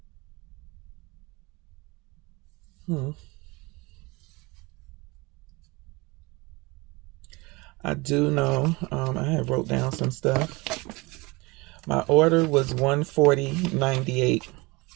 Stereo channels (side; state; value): left; quieter; 24.5 dB